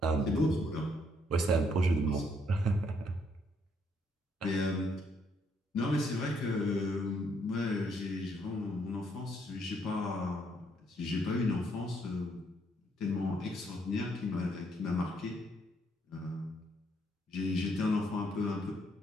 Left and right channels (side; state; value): both; normal; correlation 0.71